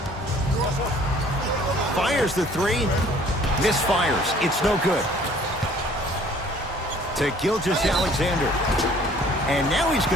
Fires the three. Misfires. It's no good. To Gilgeous-Alexander. And now he's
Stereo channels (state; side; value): normal; both; correlation 0.55